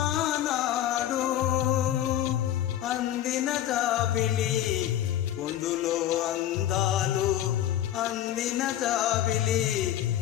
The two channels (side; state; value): right; quieter; 12.0 dB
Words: అందిన జాబిలి పొందులో అందాలు అందిన జాబిలి